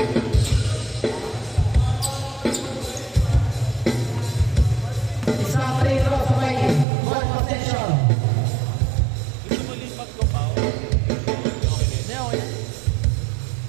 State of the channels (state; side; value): drops out; left; at 6.9 s